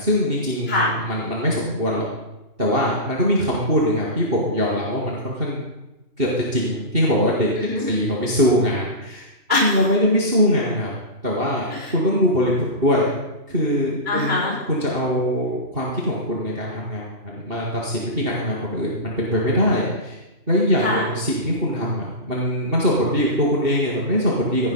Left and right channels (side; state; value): left; late; 2.7 ms